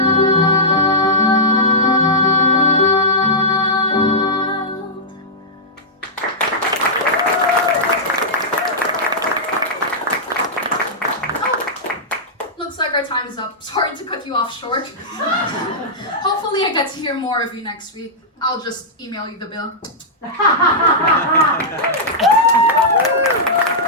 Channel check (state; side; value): normal; both; correlation -0.10